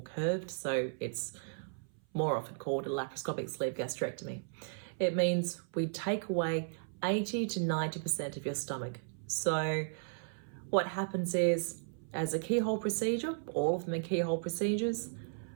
curved, so it's more often called a laparoscopic sleeve gastrectomy. It means we take away 80 to 90% of your stomach. So what happens is, as a keyhole procedure, all of them are keyhole procedures,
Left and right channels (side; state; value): left; silent; 54 dB below the other